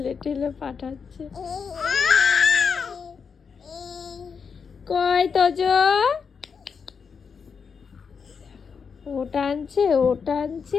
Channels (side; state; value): right; quieter; 6.0 dB